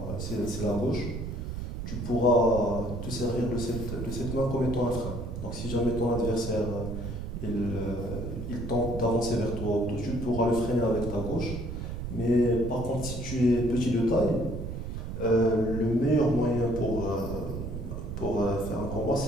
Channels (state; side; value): noise; right; rumble, 6 dB below the sound